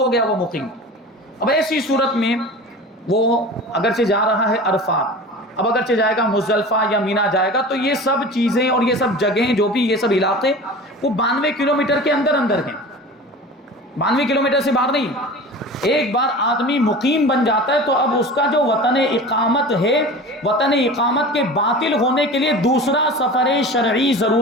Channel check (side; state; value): both; normal; correlation 0.36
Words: گیا وہ مقیم۔ اب ایسی صورت میں وہ اگرچہ جا رہا ہے عرفات، اب اگرچہ جائے گا مزدلفہ یا مینا جائے گا، تو یہ سب چیزیں اور یہ سب جگہیں جو بھی یہ سب علاقے وہ 92 کلومیٹر کے اندر ہیں، 92 کلومیٹر سے باہر نہیں۔ ایک بار آدمی مقیم بن جاتا ہے تو اب اس کا جو وطن اقامت ہے، وطن اقامت کے باطل ہونے کے لیے دوسرا سفر شرعی